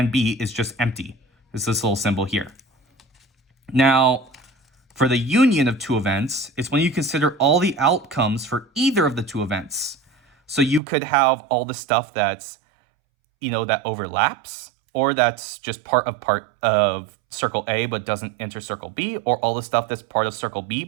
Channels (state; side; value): drops out; left; at 10.8 s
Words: B is just empty. It's this little symbol here. Now, for the union of two events, it's when you consider all the outcomes for either of the two events. So you could have all the stuff that's, that overlaps, or that's just part of circle A but doesn't enter circle B, or all the stuff that's part of circle B